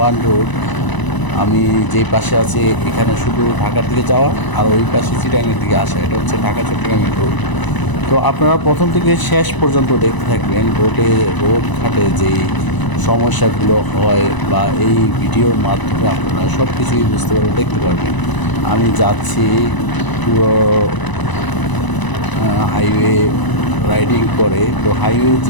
রোড। আমি যেই পাশে আছি এখানে শুধু ঢাকার দিকে যাওয়া, আর ওই পাশে চিটাগাংয়ের দিকে আসা। এটা হচ্ছে ঢাকা চট্টগ্রামের রোড। তো আপনারা প্রথম থেকে শেষ পর্যন্ত দেখতে থাকবেন। রোড ঘাটে যেই সমস্যাগুলো হয় বা এই ভিডিওর মাধ্যমে আপনারা সব কিছুই বুঝতে পারবেন, দেখতে পারবেন। আমি যাচ্ছি পুরো হাইওয়ে রাইডিং করে। তো হাইওয়ে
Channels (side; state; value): right; late; 1.0 ms